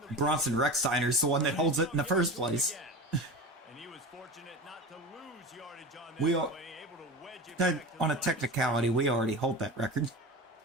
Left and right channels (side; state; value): both; normal; correlation 0.29